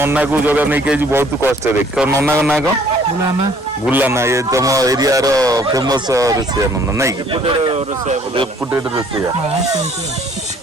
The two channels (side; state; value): both; normal; correlation 0.59